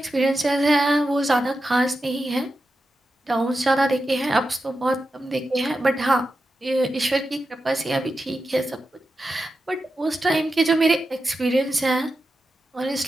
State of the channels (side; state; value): both; normal; correlation 0.90